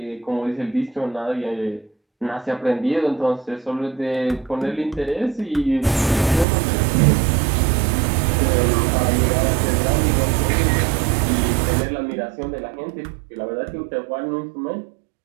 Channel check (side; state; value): left; drops out; at 6.5 s